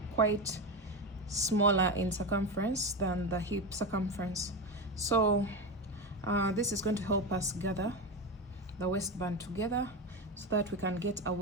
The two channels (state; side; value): normal; both; correlation 0.18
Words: quite smaller in circumference than the hip circumference. So this is going to help us gather the waistband together so that we can get a